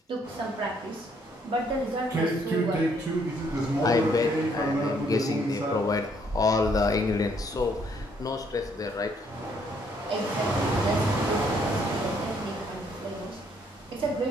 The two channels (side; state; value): both; normal; correlation 0.68